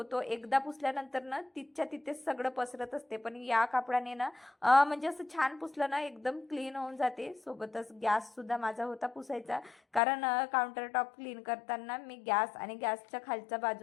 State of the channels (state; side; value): drops out; right; at 10.0 s